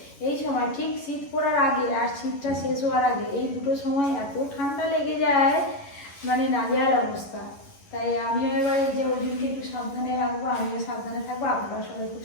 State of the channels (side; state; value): right; late; 11 ms